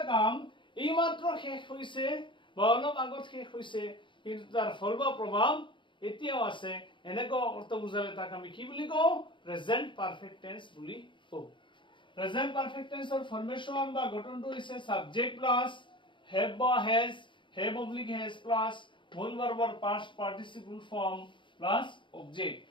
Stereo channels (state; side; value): late; right; 0.23 ms